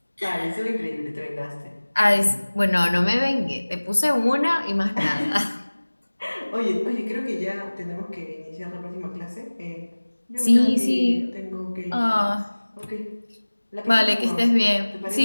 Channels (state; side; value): inverted; both; correlation -1.00